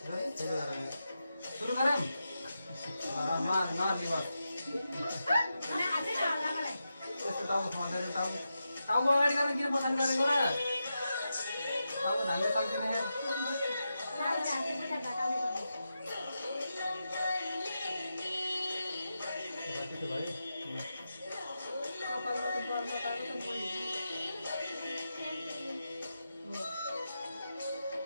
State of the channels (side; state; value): both; inverted; correlation -0.89